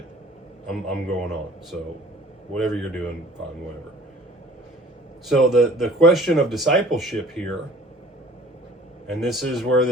I'm going on. So whatever you're doing, fine, whatever. So the question of discipleship here, and this is where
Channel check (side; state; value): both; normal; correlation 0.50